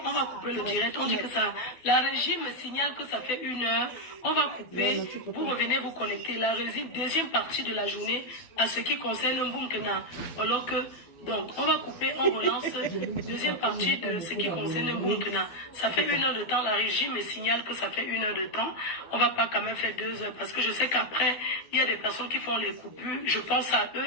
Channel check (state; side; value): late; right; 12 ms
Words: couper le direct. On dit que ça, la régie me signale que ça fait 1 heure. On va couper. Vous revenez vous connecter. La régie, deuxième partie de la journée, à ce qui concerne Mboumkena. Alors que, donc, on va couper, on relance. Deuxième partie de ce qui concerne Mboumkena. Ça fait 1 heure de temps. La régie me signale que ça fait 1 heure de temps. On va pas quand même faire 2 heures parce que je sais qu'après, il y a des personnes qui font les coupures. Je pense à